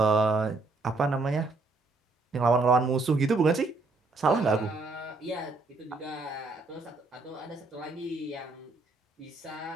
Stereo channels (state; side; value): quieter; left; 3.4 dB